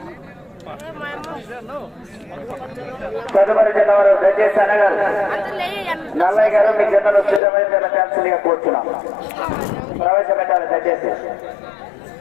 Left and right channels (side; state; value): right; drops out; at 7.4 s